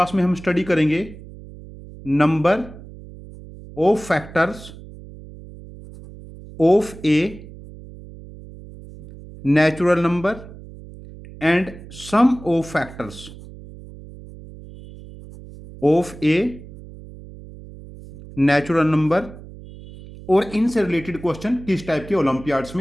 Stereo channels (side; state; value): right; noise; hum, 17 dB below the sound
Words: में हम स्टडी करेंगे number of factors of a natural number and sum of factors of a natural number और इनसे रिलेटेड क्वेश्चन किस टाइप के ओलंपियाड्स